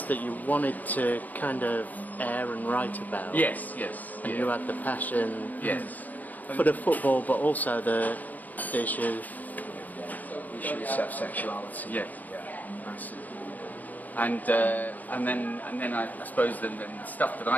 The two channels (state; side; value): late; right; 0.081 ms